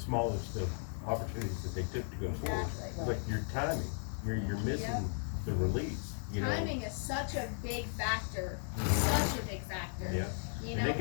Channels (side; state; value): right; silent; 54 dB below the other